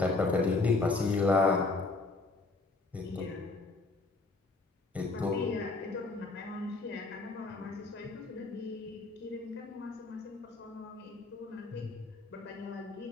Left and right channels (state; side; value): quieter; right; 3.6 dB